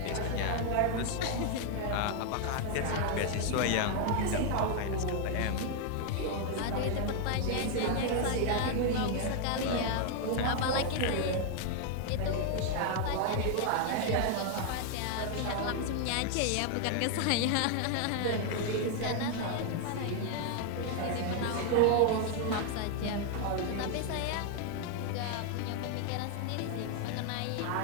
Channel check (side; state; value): both; different; correlation 0.00